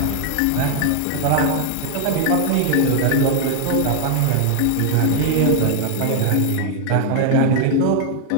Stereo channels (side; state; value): both; different; correlation 0.00